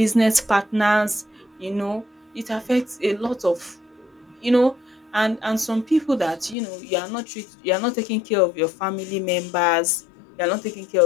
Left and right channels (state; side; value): drops out; right; at 6.6 s